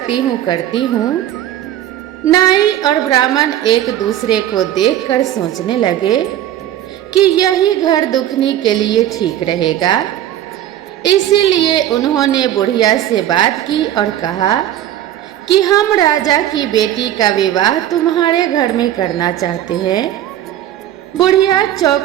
हूँ करती हूँ। नाई और ब्राह्मण एक दूसरे को देखकर सोचने लगे कि यही घर दुखनी के लिए ठीक रहेगा। इसीलिए उन्होंने बुढ़िया से बात की और कहा कि हम राजा की बेटी का विवाह तुम्हारे घर में करना चाहते हैं। बुढ़िया चौंक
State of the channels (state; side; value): quieter; left; 12.1 dB